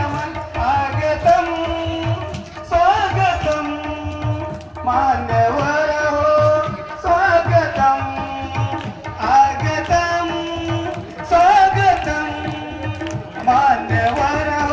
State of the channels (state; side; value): identical; both; correlation 1.00